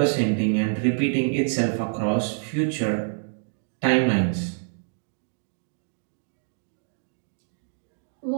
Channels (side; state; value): left; silent; digital silence